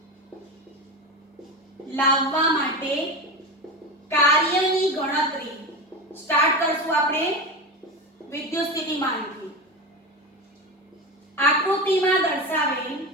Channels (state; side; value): normal; both; correlation 0.23